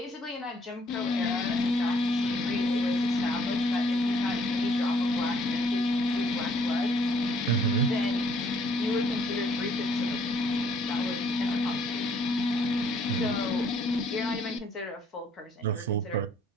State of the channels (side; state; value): both; normal; correlation 0.64